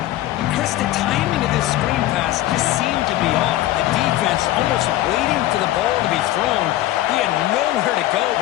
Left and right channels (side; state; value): right; quieter; 15.1 dB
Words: Chris, the timing of this screen pass just seemed to be off. The defense almost waiting for the ball to be thrown. He had nowhere to go